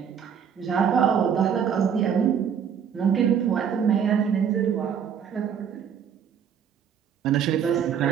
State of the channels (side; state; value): left; quieter; 7.9 dB